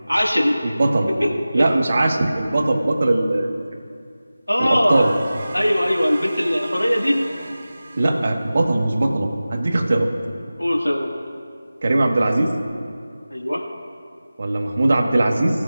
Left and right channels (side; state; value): both; inverted; correlation -0.96